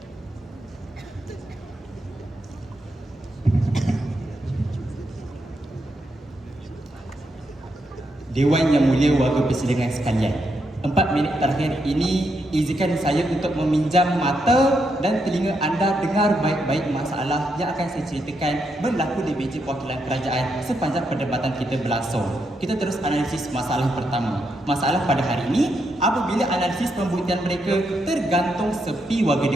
Dewan yang mulia warga persidangan sekalian, 4 minit terakhir ini izinkan saya untuk meminjam mata dan telinga anda dengar baik-baik masalah yang akan saya ceritakan berlaku di meja perwakilan kerajaan sepanjang perdebatan kita berlangsung. Kita terus analisis masalah pertama. Masalah pada hari ini, apabila analisis pembuktian mereka tergantung sepi warga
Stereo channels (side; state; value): both; normal; correlation 0.81